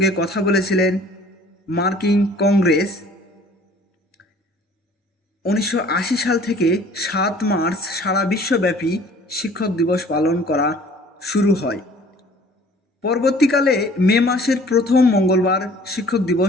কথা বলেছিলেন মার্কিন কংগ্রেস। 1980 সাল থেকে 7 মার্চ সারা বিশ্বব্যাপী শিক্ষক দিবস পালন করা শুরু হয়। পরবর্তীকালে মে মাসের প্রথম মঙ্গলবার শিক্ষক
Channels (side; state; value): both; normal; correlation 0.52